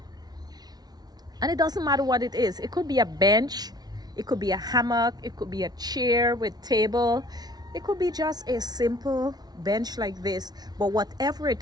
And it doesn't matter what it is. It could be a bench, it could be a hammock, it could be a chair with table, it could be just a simple bench like this. But whatever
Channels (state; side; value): late; left; 0.19 ms